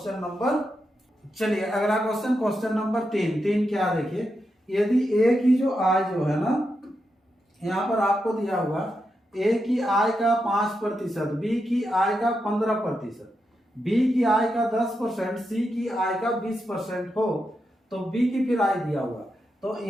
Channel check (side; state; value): both; normal; correlation 0.86